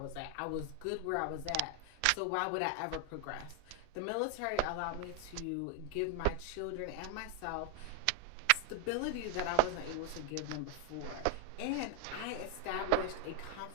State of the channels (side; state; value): both; different; correlation 0.00